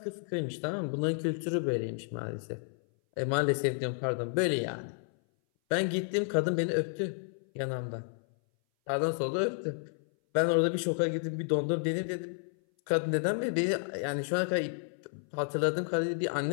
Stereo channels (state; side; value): silent; right; 57 dB below the other